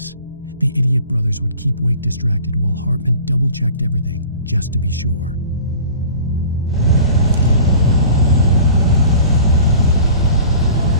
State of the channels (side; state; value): both; inverted; correlation -0.44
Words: The idiot brothers would keep Wake distracted while Hartman double-checked everything, just to be sure.